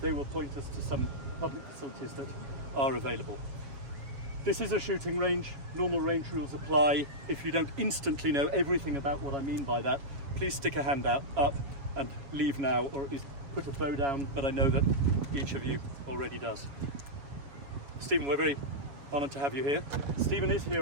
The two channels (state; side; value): late; left; 7.2 ms